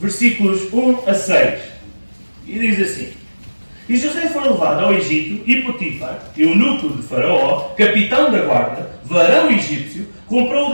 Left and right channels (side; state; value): both; inverted; correlation -1.00